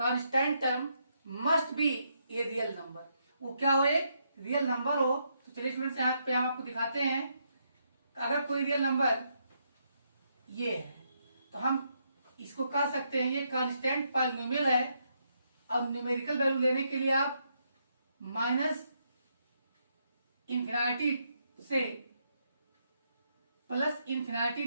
term must be a real number. वो क्या हो, एक रियल नंबर हो। तो चलिए स्टूडेंट्स यहाँ पे हम आपको दिखाते हैं। अगर कोई रियल नंबर ये है तो हम इसको कह सकते हैं ये कांस्टेंट पॉलिनोमियल है। अब न्यूमेरिकल वैल्यू लेने के लिए आप माइनस इन्फिनिटी से प्लस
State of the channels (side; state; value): both; inverted; correlation -0.77